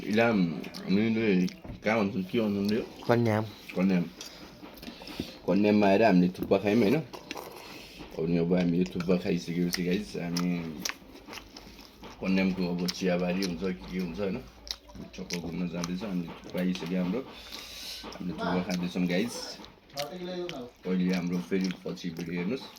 हामीले कहाँ भन्छौँ के भन्छौँ यो कन्याम कन्याममा आएर हामीले थुक्पा खायौँ होइन अनि अब हामीले थुक्पा खाइसकेपछि गाइस हामी कन्यामको अब चियाबारी हुन्छ के हुन्छ होइन चक्कर घुम्न जाँदैछ अनि थुक्पा आइसक्यो हामीले थुक्पा खाँदैछौँ गाइस अहिले हाम्रो फेरि पछि भिडियो हेर्नुहोस्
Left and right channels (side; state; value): both; identical; correlation 1.00